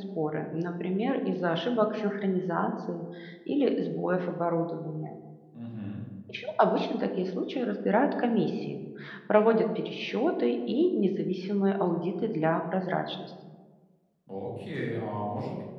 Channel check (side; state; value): both; identical; correlation 1.00